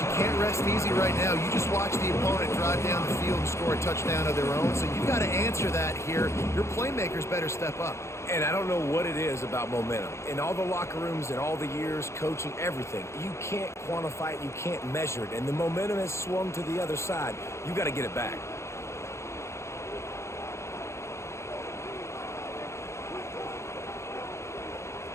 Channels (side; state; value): right; late; 0.13 ms